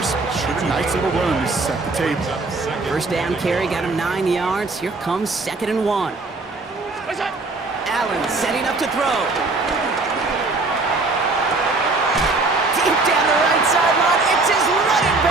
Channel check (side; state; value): left; quieter; 3.5 dB